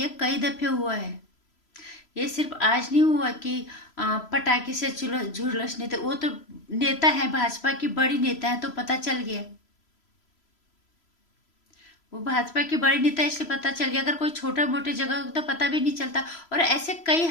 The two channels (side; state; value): right; late; 3.0 ms